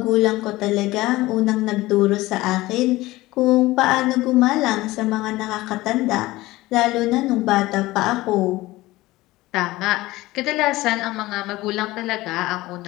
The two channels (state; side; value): quieter; right; 18.6 dB